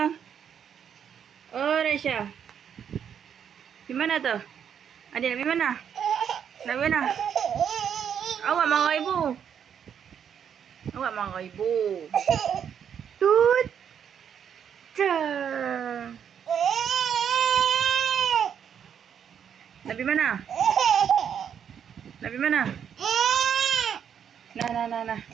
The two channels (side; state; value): left; quieter; 8.2 dB